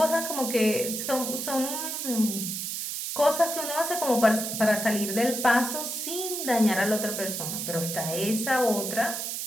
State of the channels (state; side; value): noise; right; hiss, 4 dB below the sound